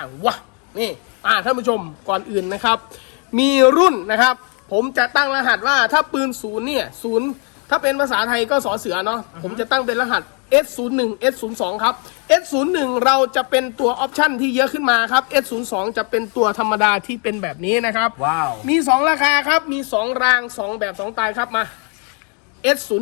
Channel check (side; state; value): right; quieter; 38.1 dB